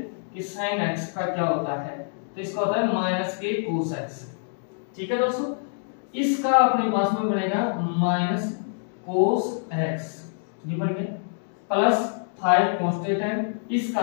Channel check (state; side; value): silent; right; digital silence